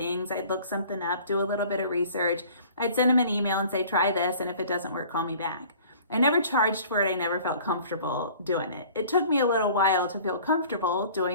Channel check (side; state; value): both; inverted; correlation -0.49